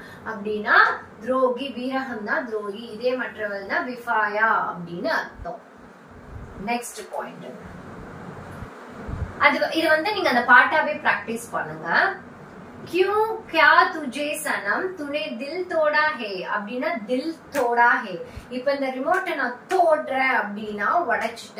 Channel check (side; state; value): both; identical; correlation 1.00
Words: அப்படின்னா துரோகி, பீரகம்னா துரோகி, இதே மற்றவள்னா பிஃபாயா அப்படின்னு அர்த்தம். நெக்ஸ்ட் பாயிண்ட், இது நீங்க அந்த பாட்டாவே பிராக்டிஸ் பண்ணுங்க. क्यों क्या तुझे सनम तूने दिल तोड़ा है அப்படின்னா दिल तोड़ा है. இப்ப இந்த ரிமோட்டை நான் தோடுறேன் அப்படின்னா